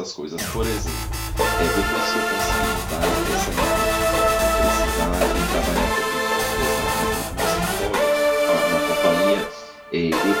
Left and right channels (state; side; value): identical; both; correlation 1.00